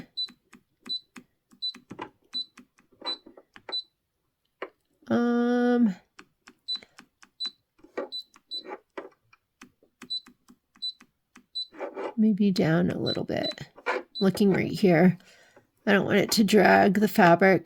Maybe down a little bit. Looking right here. I don't want it to drag the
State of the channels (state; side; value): identical; both; correlation 1.00